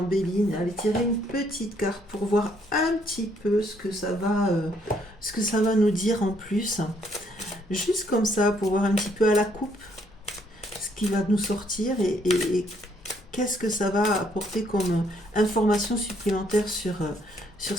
Béline, aller tirer une petite carte pour voir un petit peu ce que ça va nous dire en plus. Juste comme ça, pour voir un petit peu à la coupe ce qui va nous sortir et qu'est-ce que ça va apporter comme information supplémentaire sur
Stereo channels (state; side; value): normal; both; correlation 0.69